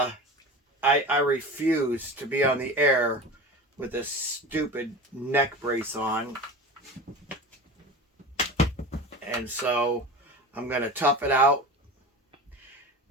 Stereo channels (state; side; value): normal; both; correlation 0.32